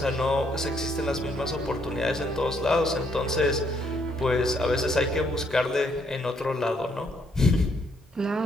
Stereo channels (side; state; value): both; normal; correlation 0.71